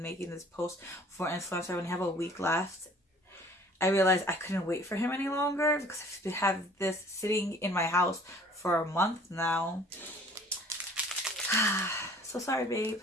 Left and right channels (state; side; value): normal; both; correlation 0.52